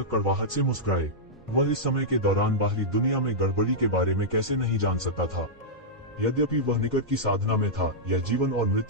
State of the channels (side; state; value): both; normal; correlation -0.10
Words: कड़वाहट से मुस्कुराए। वह इस समय के दौरान बाहरी दुनिया में गड़बड़ी के बारे में कैसे नहीं जान सकता था। यद्यपि वह निकट की साधना में था, यह जीवन और